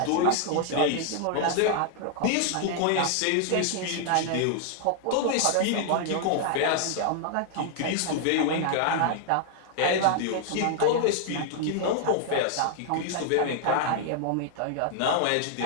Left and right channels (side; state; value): both; different; correlation 0.00